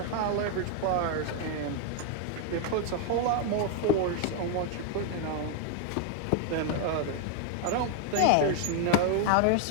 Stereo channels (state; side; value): different; both; correlation 0.00